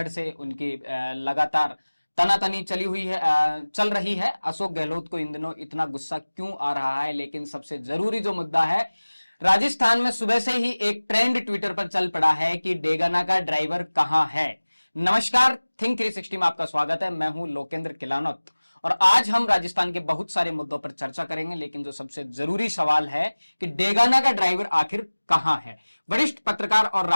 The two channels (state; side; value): inverted; both; correlation -1.00